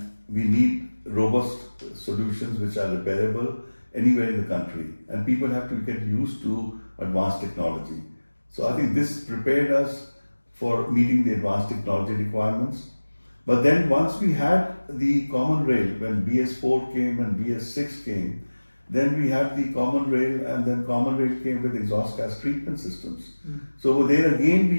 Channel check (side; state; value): both; inverted; correlation -1.00